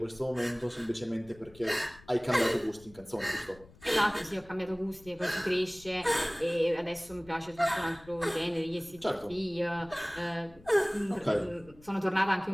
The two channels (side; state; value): left; noise; rumble, 24 dB below the sound